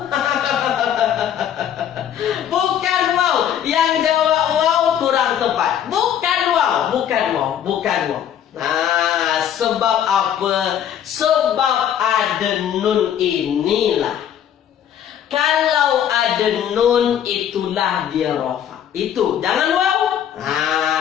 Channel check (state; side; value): quieter; right; 9.8 dB